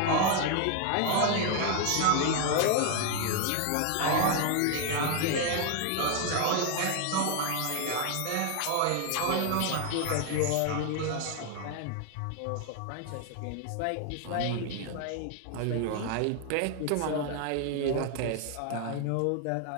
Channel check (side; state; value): both; different; correlation 0.01